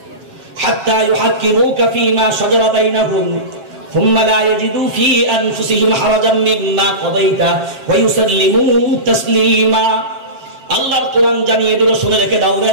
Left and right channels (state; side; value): late; left; 7.4 ms